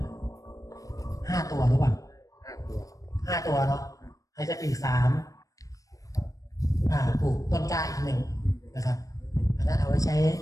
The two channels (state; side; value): late; right; 0.16 ms